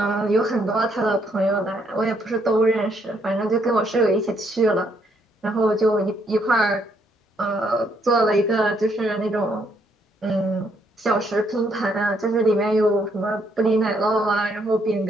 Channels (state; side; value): normal; both; correlation 0.72